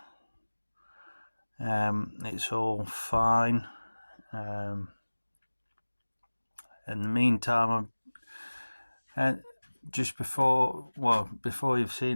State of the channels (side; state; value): both; inverted; correlation -1.00